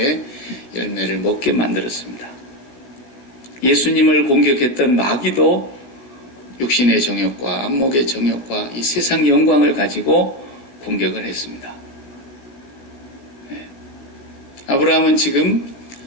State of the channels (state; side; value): late; right; 16 ms